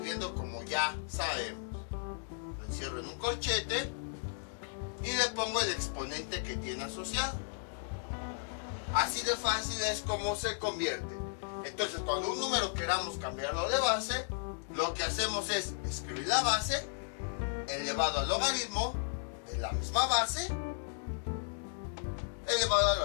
como ya sabemos. Lo encierro en un corchete y le pongo el exponente que tiene asociado. Así de fácil es como se convierte. Entonces, cuando un número queramos cambiarlo de base, lo que hacemos es escribir la base elevado al logaritmo de la misma base elevado a la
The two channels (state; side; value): silent; right; digital silence